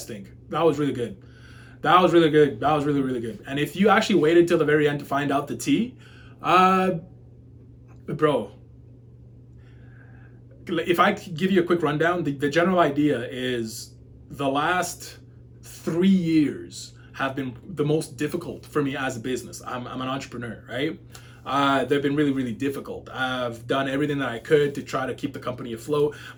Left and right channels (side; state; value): both; identical; correlation 1.00